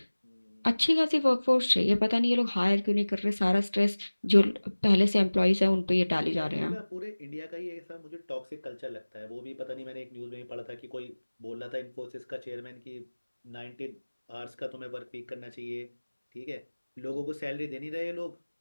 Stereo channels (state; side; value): inverted; both; correlation -1.00